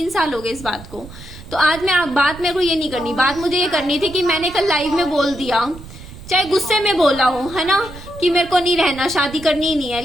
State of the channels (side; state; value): right; noise; rumble, 16 dB below the sound